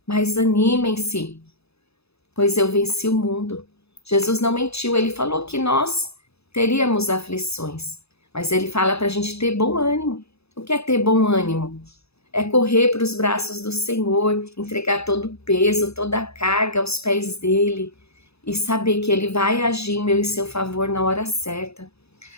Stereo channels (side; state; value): right; late; 0.79 ms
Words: mas animem-se, pois eu venci o mundo. Jesus não mentiu, ele falou que nós teríamos aflições, mas ele fala para a gente ter bom ânimo. O que é ter bom ânimo? É correr para os braços do Senhor, entregar todo o peso, toda a carga aos pés dele e saber que ele vai agir em meu e seu favor na hora certa.